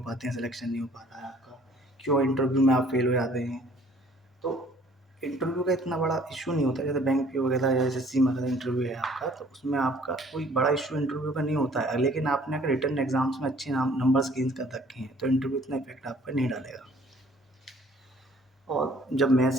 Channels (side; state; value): both; normal; correlation 0.56